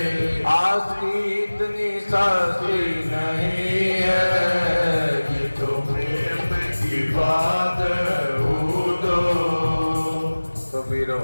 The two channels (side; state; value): both; inverted; correlation -1.00